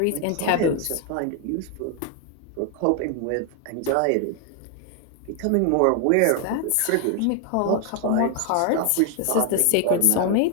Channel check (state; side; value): different; both; correlation 0.00